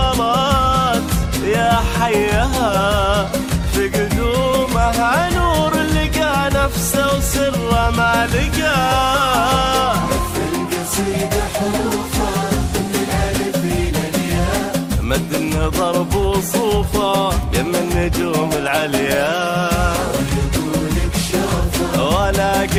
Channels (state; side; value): identical; both; correlation 1.00